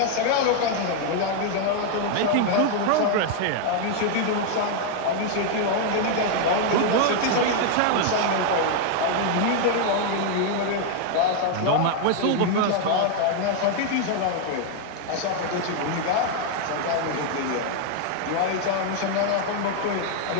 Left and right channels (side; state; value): both; different; correlation 0.00